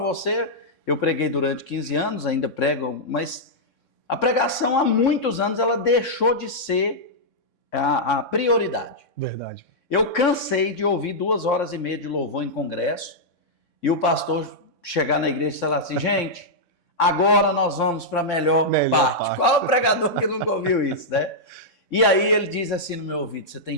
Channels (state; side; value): late; right; 3.6 ms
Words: eu preguei durante 15 anos, ainda prego, mas a pregação há muitos anos ela deixou de ser a prioridade. Verdade. Eu cansei de ouvir 2 horas e meia de louvor em congresso e o pastor chegar na igreja e falar assim, gente, agora nós vamos para a melhor parte. Qual é o pregador que nunca ouviu isso, né? E aí ele diz assim no meu ouvido, você tem